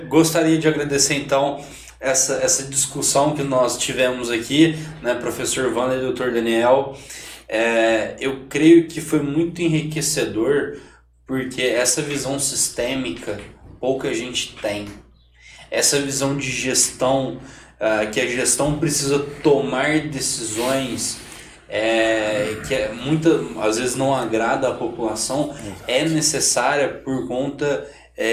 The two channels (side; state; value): both; identical; correlation 1.00